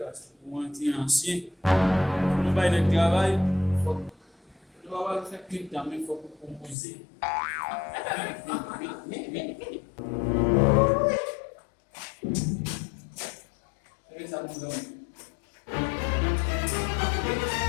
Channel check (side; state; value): right; drops out; at 6.8 s